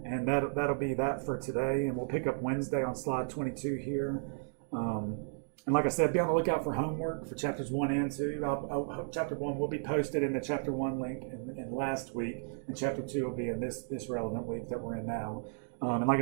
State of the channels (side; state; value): left; silent; digital silence